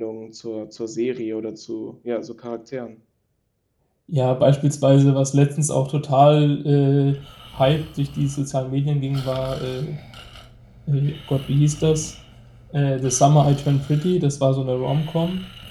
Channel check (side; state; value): both; identical; correlation 1.00